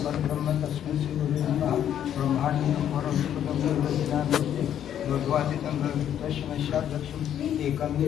परब्रह्म तस्मै श्री गुरुवे नमः. ब्रह्माण्डं भगवादितं तस्मै लक्ष्मी एकं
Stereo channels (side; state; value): right; quieter; 10.1 dB